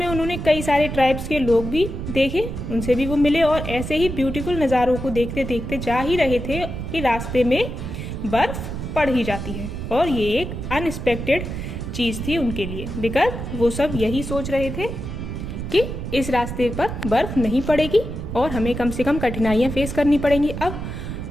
उन्होंने कई सारे ट्राइब्स के लोग भी देखे, उनसे भी वो मिले और ऐसे ही ब्यूटीफुल नज़ारों को देखते देखते जा ही रहे थे कि रास्ते में बर्फ पड़ ही जाती है. और ये एक अनएक्सपेक्टेड चीज़ थी उनके लिए, बिकॉज वो सब यही सोच रहे थे कि इस रास्ते पर बर्फ नहीं पड़ेगी और हमें कम से कम कठिनाइयाँ फेस करनी पड़ेंगी. अब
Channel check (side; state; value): right; noise; rumble, 6 dB below the sound